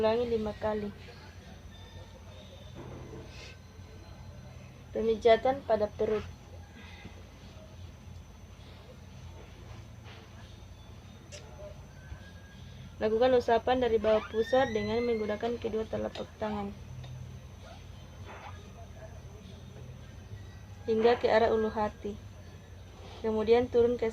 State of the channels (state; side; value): identical; both; correlation 1.00